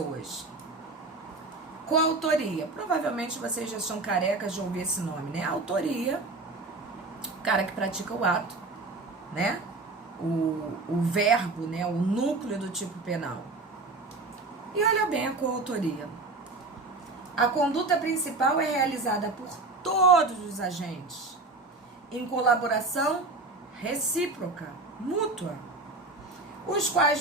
Coautoria. Provavelmente vocês já são carecas de ouvir esse nome, né? Autoria, o cara que pratica o ato, né? O verbo, né? O núcleo do tipo penal. E olha bem a coautoria. A conduta principal é realizada por todos os agentes, em colaboração recíproca, mútua, os quais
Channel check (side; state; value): left; quieter; 3.3 dB